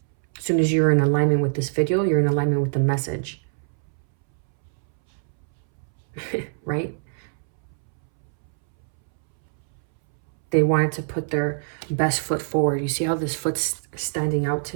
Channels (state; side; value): silent; left; 63 dB below the other